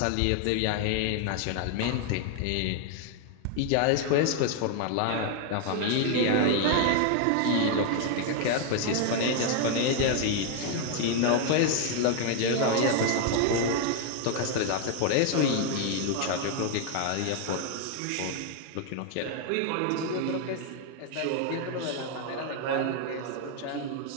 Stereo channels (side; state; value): both; different; correlation 0.00